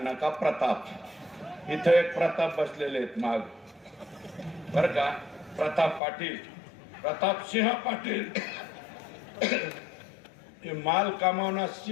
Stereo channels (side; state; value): right; drops out; at 6.0 s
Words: का प्रताप, इथं एक प्रताप बसलेले आहेत माग बर का, प्रताप पाटील, प्रताप सिंह पाटील. हे माल कमावणार